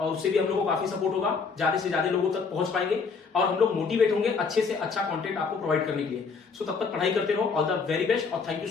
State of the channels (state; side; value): quieter; right; 5.1 dB